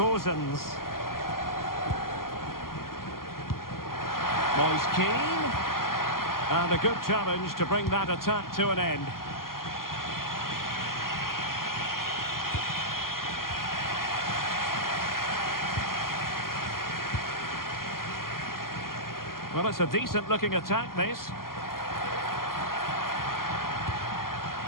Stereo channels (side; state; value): right; late; 0.92 ms